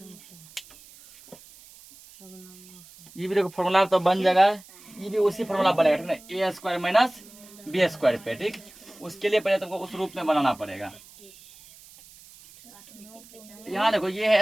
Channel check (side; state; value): right; noise; hiss, 22 dB below the sound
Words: ये भी देखो फॉर्मूला तो बन जाएगा, ये भी उसी फॉर्मूला बनेगा, ठीक ना। ए स्क्वायर माइनस बी स्क्वायर पे, ठीक। उसके लिए पहले तुमको उस रूप में बनाना पड़ेगा। यहाँ देखो ये